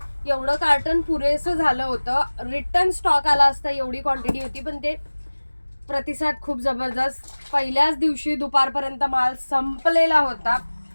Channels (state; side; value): inverted; both; correlation -1.00